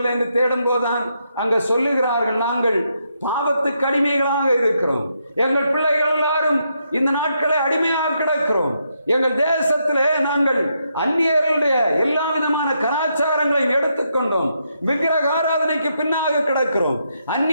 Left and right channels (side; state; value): both; inverted; correlation -0.79